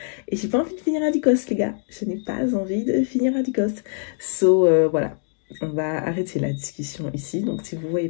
Et j'ai pas envie de finir à Dicos, les gars. Je n'ai pas envie de finir à Dicos. Voilà. On va arrêter la discussion ici. Donc, si vous voyez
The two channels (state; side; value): silent; right; digital silence